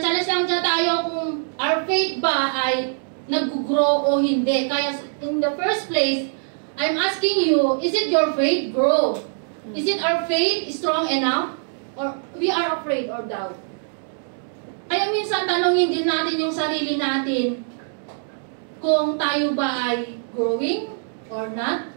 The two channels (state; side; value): silent; left; digital silence